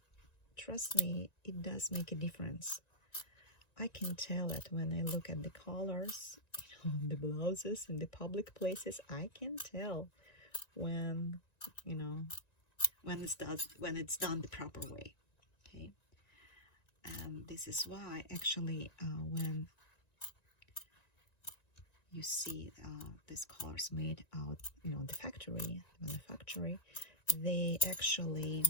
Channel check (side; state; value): right; late; 1.9 ms